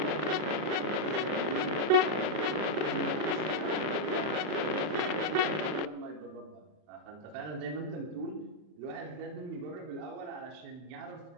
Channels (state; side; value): late; left; 39 ms